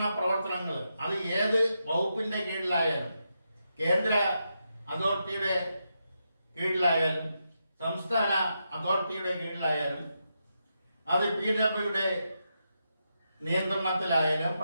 പ്രവർത്തനങ്ങൾ, അത് ഏത് വകുപ്പിന്റെ കീഴിലായാലും, കേന്ദ്ര അതോറിറ്റിയുടെ കീഴിലായാലും, സംസ്ഥാന അതോറിറ്റിയുടെ കീഴിലായാലും, അത് PWയുടെ നിയന്ത്രണത്തിലായാലും,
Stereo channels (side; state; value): both; inverted; correlation -0.84